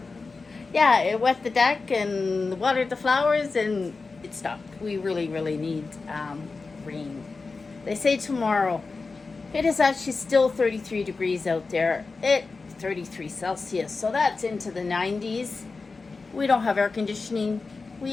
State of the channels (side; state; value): right; quieter; 4.1 dB